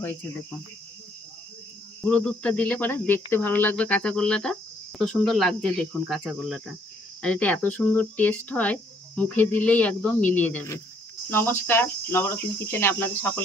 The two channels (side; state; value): both; normal; correlation 0.66